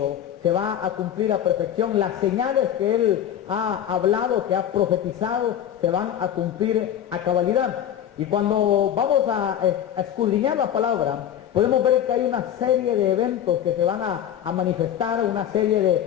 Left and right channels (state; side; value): quieter; right; 10.2 dB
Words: se va a cumplir a perfección. Las señales que Él ha hablado, que ha profetizado, se van a cumplir a cabalidad. Y cuando vamos a escudriñar la palabra, podemos ver que hay una serie de eventos que se van a manifestar, una serie